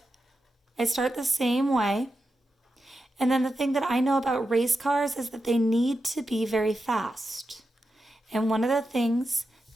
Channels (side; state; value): both; normal; correlation 0.89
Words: I start the same way. And then the thing that I know about race cars is that they need to be very fast. And one of the things